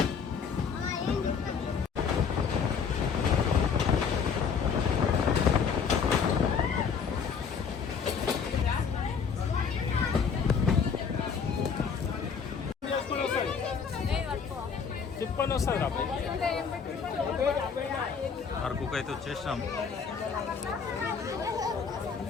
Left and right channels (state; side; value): quieter; right; 6.2 dB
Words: అరకుకు అయితే వచ్చేసినాం.